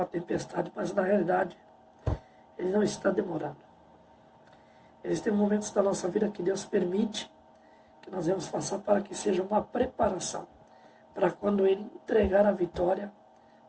tempestade, mas na realidade Ele não está demorando. Existem momentos da nossa vida que Deus permite que nós vamos passar para que seja uma preparação, para quando Ele entregar a vitória,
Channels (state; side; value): identical; both; correlation 1.00